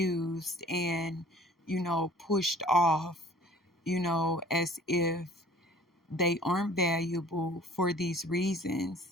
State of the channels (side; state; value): both; normal; correlation 0.50